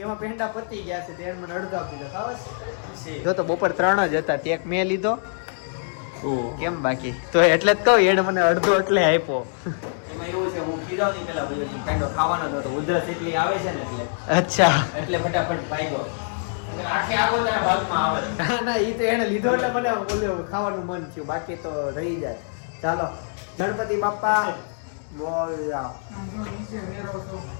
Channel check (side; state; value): right; silent; digital silence